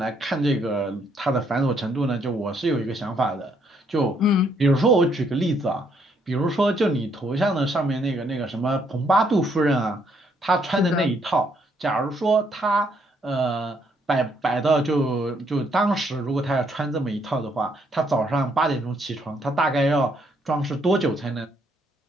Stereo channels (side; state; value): both; normal; correlation 0.71